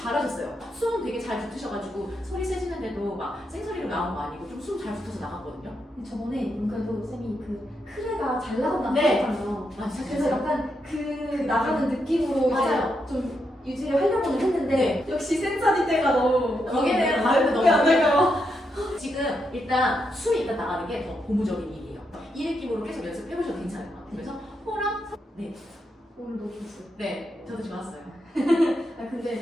숨 되게 잘 붙으셔가지고 소리 세지는데도 막 생소리로 나온 거 아니고 좀 숨 잘 붙어서 나갔거든요. 저번에 문과도 쌤이 그 크레가 잘 나간다고 네. 하셨잖아요. 맞아요. 그래서 약간 그 나가는 느낌으로 맞아요. 이제 좀 유지를 하려고는 했는데 네. 역시 센사리 때가 너무 거기는 발음도 너무 안 될까요? 지금 일단 숨이 일단 나가는 게 더 고무적인 일이에요. 이 느낌으로 계속 연습해보셔도 괜찮을 것 같아요. 그래서 호랑 네, 오늘 너무 좋았어요. 네, 저도 좋았어요. 아 근데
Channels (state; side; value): normal; both; correlation 0.82